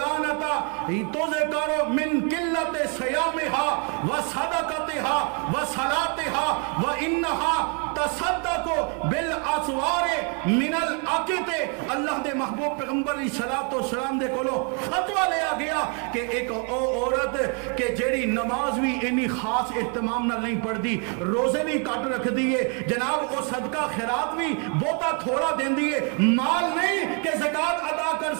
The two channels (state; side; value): quieter; left; 36.6 dB